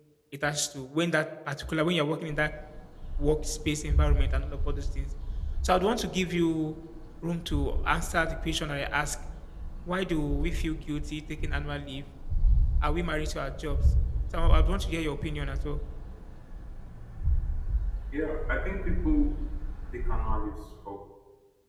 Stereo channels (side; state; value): both; identical; correlation 1.00